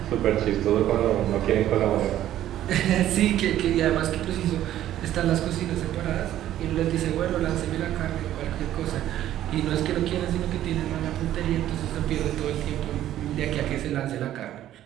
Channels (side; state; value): left; quieter; 12.5 dB